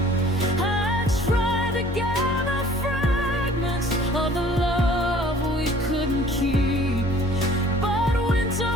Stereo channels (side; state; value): both; normal; correlation 0.52